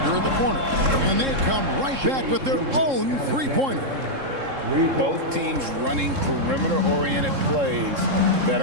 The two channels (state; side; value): late; left; 3.7 ms